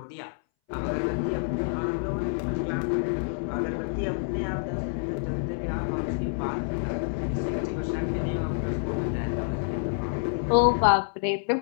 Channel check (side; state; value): right; silent; 59 dB below the other